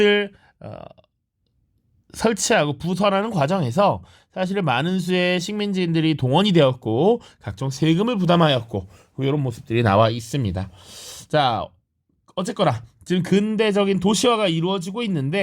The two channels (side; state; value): both; identical; correlation 1.00